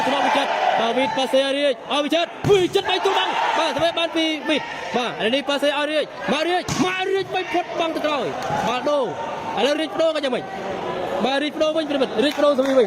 ថ្នាក់វិចិត្របាទវីតប៉ាសេរៀចឲ្យវិចិត្រចិត្ត3ទូបាំងបាទស្វេបានពីវីតបាទឥឡូវនេះប៉ាសេឲ្យរៀចមករៀចបីផុតបាំងទៅក្រោយបាល់ដូឥឡូវរៀចបដូរក៏យ៉ាងម៉េចបាទរៀចបដូរវិញប្រិមិត្តរៀចបដូរសវីវិញ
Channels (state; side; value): identical; both; correlation 1.00